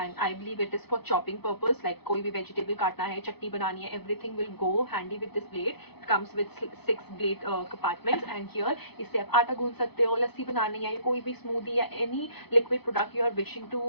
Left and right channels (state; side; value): late; right; 0.98 ms